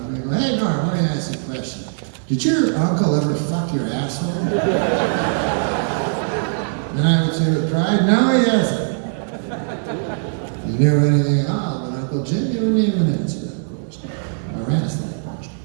and go, hey Norm, let me ask you a question. Did your uncle ever fuck your asshole? And I would say with pride, no he hasn't. You knew anything at all, but Uncle Jim, you wouldn't even answer that question. Or ask that question.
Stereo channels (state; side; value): silent; left; digital silence